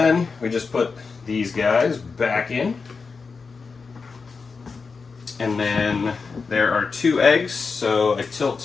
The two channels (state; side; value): quieter; right; 4.8 dB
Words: we just put these guys back in. And then there are 2 eggs, so